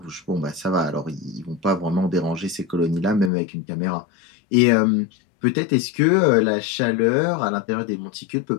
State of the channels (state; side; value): drops out; right; at 3.3 s